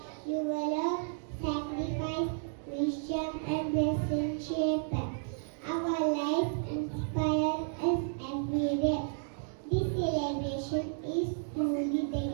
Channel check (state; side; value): silent; left; digital silence